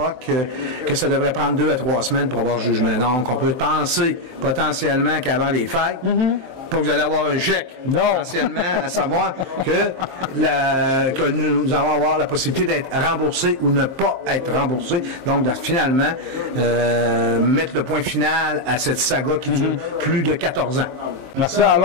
que ça devrait prendre 2 à 3 semaines pour avoir le jugement. Donc, on peut penser potentiellement qu'avant les fêtes, pas que vous allez avoir un chèque, potentiellement, à savoir que nous allons avoir la possibilité d'être remboursés ou ne pas être remboursés. Donc, finalement, mettre le point final à cette saga qui dure plus de 14 ans. Merci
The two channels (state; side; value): late; left; 23 ms